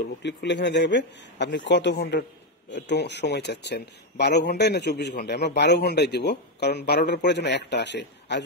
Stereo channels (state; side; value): normal; both; correlation 0.05